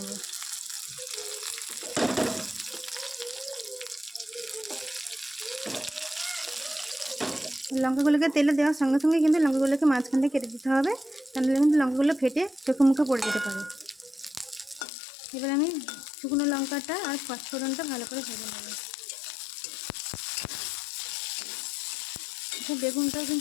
লঙ্কাগুলোকে তেলে দেওয়ার সঙ্গে সঙ্গে কিন্তু লঙ্কাগুলোকে মাঝখান থেকে কেটে দিতে হবে, তাহলে কিন্তু লঙ্কাগুলো ফেটে চোখে মুখে পড়ে যেতে পারে। এবার আমি শুকনো লঙ্কাটা আর পাঁচফোড়নটা ভালো করে ভেজে নেব। বেগুনটাও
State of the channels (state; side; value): drops out; right; at 14.9 s